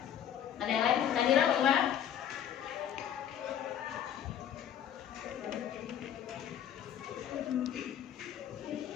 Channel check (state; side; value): quieter; right; 9.9 dB